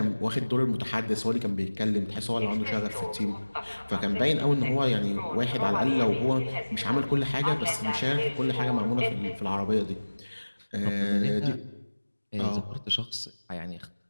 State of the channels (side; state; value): both; inverted; correlation -1.00